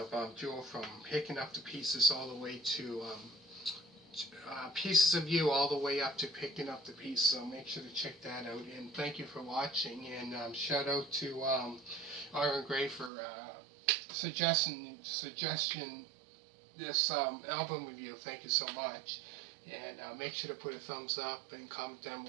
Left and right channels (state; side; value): drops out; left; at 13.1 s